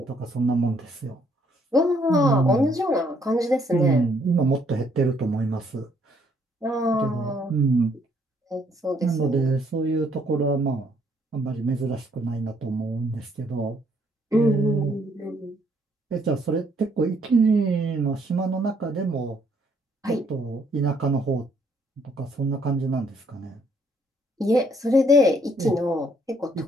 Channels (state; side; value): normal; both; correlation 0.67